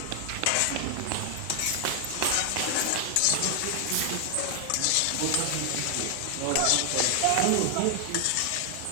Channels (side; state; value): both; different; correlation 0.00